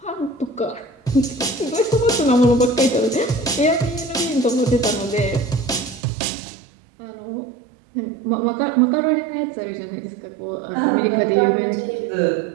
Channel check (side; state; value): left; drops out; at 6.0 s